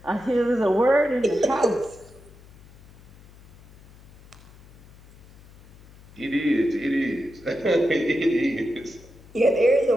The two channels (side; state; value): left; noise; hum, 23 dB below the sound